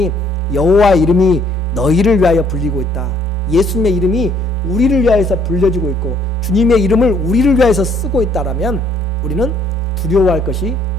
여호와의 이름이 너희를 위하여 불리고 있다. 예수님의 이름이 우리를 위하여서 불려지고 있고 주님의 이름을 우리를 위하여서 쓰고 있다라면 우리는 두려워할 것이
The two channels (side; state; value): right; noise; rumble, 29 dB below the sound